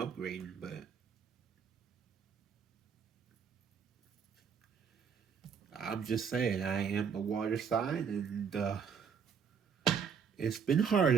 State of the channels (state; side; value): quieter; left; 6.7 dB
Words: but I'm just saying, I am a water sign, and it's been hard